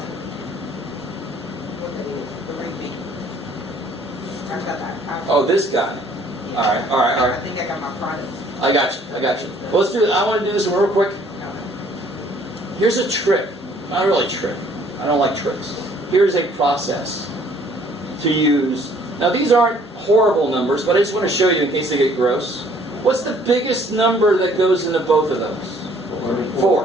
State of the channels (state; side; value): normal; both; correlation 0.59